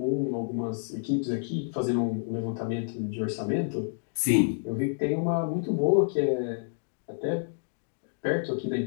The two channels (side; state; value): right; silent; digital silence